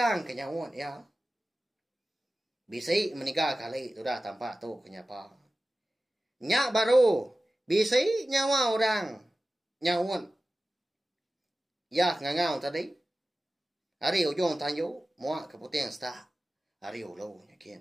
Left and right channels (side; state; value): both; normal; correlation 0.96